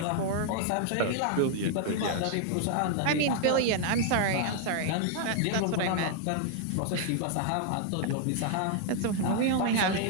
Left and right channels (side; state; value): both; different; correlation 0.00